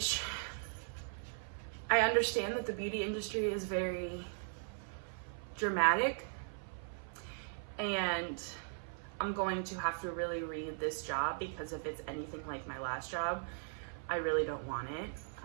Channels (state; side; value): silent; left; 52 dB below the other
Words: I understand that the beauty industry is very dramatic, and I'm going to have to really read this job, because if it's anything like my last job, I really don't want it.